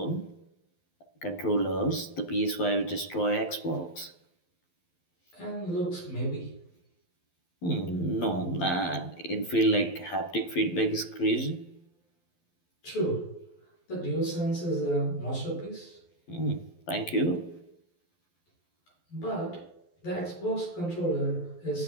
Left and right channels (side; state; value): right; late; 12 ms